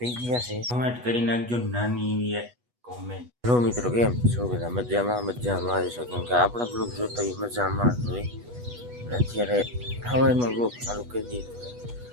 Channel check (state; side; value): late; left; 8.2 ms